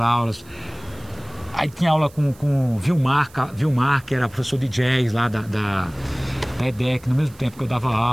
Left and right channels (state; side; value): noise; right; hiss, 25 dB below the sound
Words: Aí tinha aula com o Vilmar, que era professor de jazz lá da EDEC, no mesmo tempo que eu dava